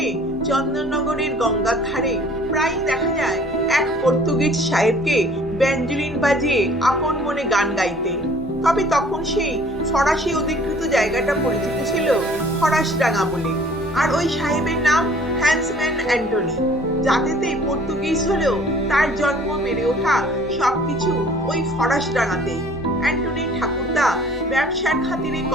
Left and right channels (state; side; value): normal; both; correlation 0.52